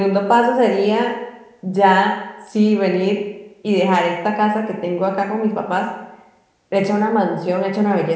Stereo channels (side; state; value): both; identical; correlation 1.00